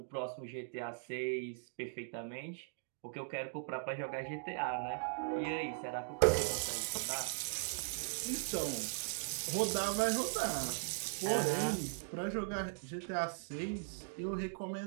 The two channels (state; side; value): silent; left; digital silence